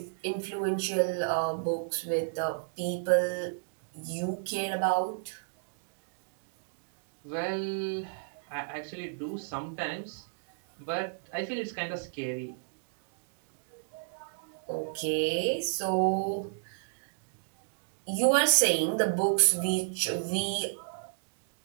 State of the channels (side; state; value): left; silent; digital silence